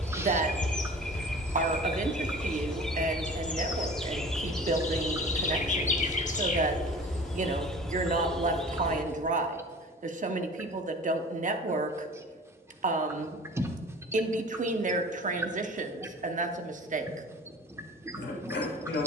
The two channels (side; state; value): both; normal; correlation 0.42